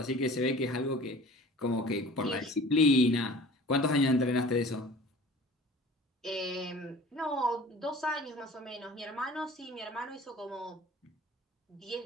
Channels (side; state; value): both; normal; correlation 0.44